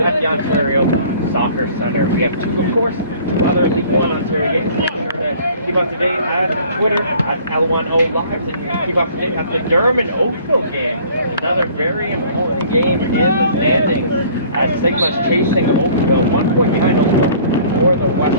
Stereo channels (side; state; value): both; inverted; correlation -0.52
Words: the Ontario Soccer Centre. We have two other League One Ontario games. Make sure to keep up to date at Twitter at L1OM Lives, and you can keep up to date at the Durham and Oakville game. Another very important game in the standings as Sigma's chasing Oakville, 1 point behind Oakville for the